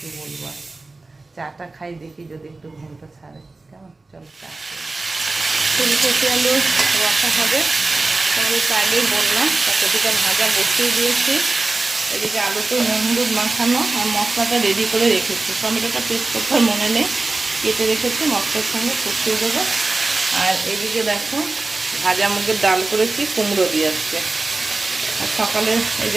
বলবো। চাটা খাই, দেখি যদি একটু ঘুমটা ছাড়ে। কেমন, চলো চা। ফুলকপি আলু রসা হবে, তোমাদের তো আগেই বললাম। কপিটা ভাজা বসিয়ে দিয়েছি। এদিকে আলুতে নুন হলুদ মাখানো আর মশলাটা রেডি করে রেখেছি। টমেটোটা পেস্ট করতে মনে নেই, কেটে রেখেছি, মশলার সঙ্গে কষিয়ে দেবো। আর এদিকে দেখো, ভাজা মুগের ডাল করেছি, কুমড়ো দিয়ে আসছে। আর সকালে এই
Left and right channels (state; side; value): quieter; left; 3.4 dB